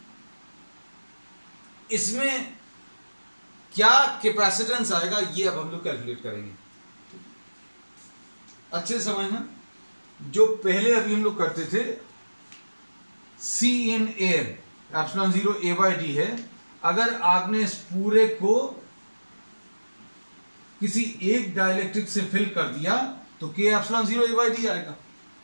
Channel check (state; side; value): inverted; both; correlation -1.00